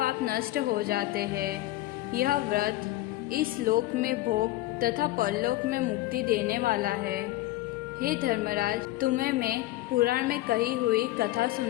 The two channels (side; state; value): right; quieter; 16.8 dB